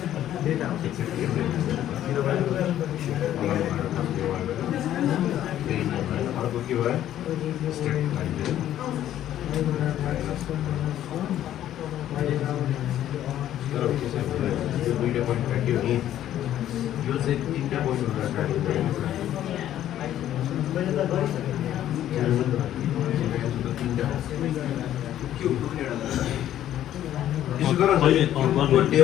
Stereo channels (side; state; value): right; quieter; 11.9 dB